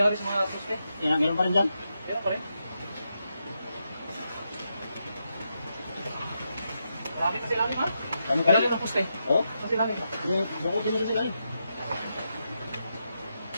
sa mga suste. Meron pa rin dyan? Meron pa rin. Marami kasi lalim, ha? Dami pa rin? Lalim ng puste. Oo? Kasi lalim. Bakit din kasi lalim?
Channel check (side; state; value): both; inverted; correlation -0.85